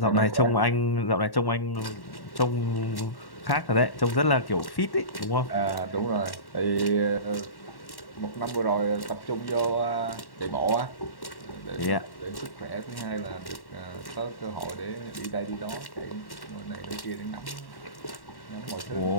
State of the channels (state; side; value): late; right; 1.1 ms